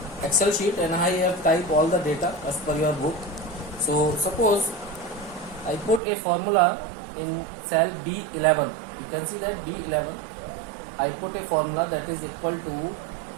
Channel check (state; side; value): drops out; left; at 6.0 s